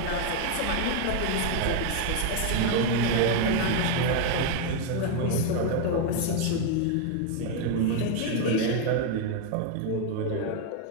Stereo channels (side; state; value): both; different; correlation 0.01